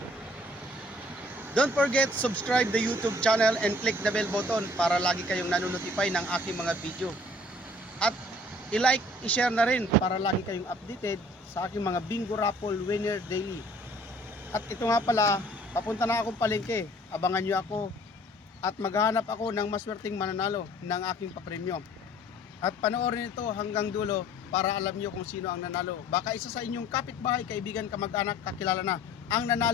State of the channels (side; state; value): both; normal; correlation 0.54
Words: Don't forget subscribe the YouTube channel and click the bell button para lagi kayong nanonotify ng aking mga video. At i-like, i-share na rin para lagi kayong updated sa aking mga bingo raffle winner daily. At ito nga pala, papunta na akong palengke. Abangan nyo ako at maghahanap ako ng maswerteng mananalo ng aking papremyo. At panoorin ito hanggang dulo para alam nyo kung sino ang nanalo. Baka isa sa inyong kapitbahay, kaibigan, kamag-anak, kakilala na ang